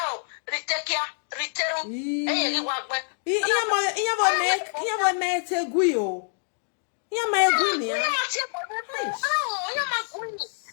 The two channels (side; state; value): right; silent; digital silence